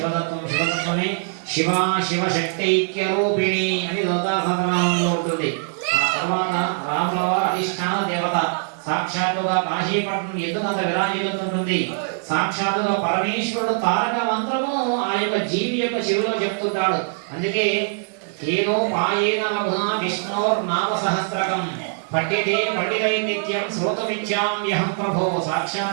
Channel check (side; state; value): left; silent; digital silence